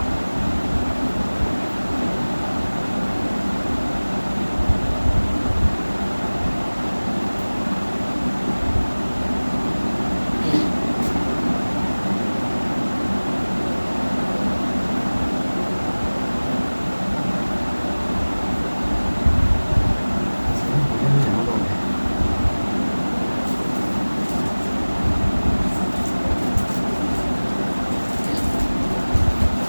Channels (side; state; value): both; inverted; correlation -1.00